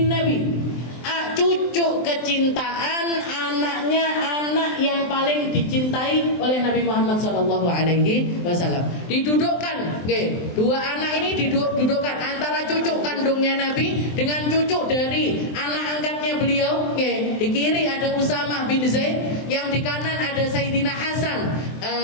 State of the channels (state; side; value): late; right; 23 ms